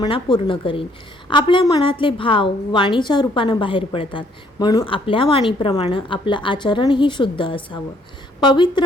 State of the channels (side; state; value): both; normal; correlation 0.65